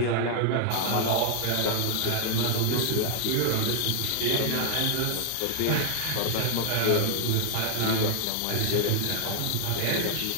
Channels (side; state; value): both; different; correlation 0.00